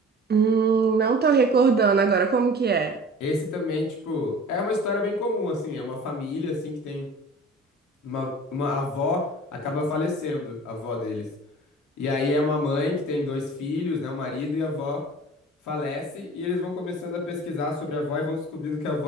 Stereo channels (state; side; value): normal; both; correlation 0.43